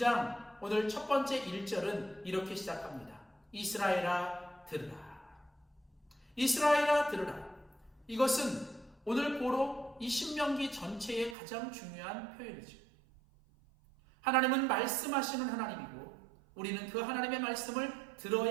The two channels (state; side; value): drops out; left; at 11.4 s